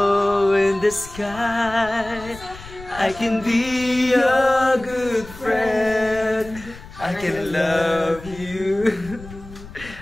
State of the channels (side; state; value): left; noise; rumble, 17 dB below the sound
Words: in the sky, I can be your good friend. I can love you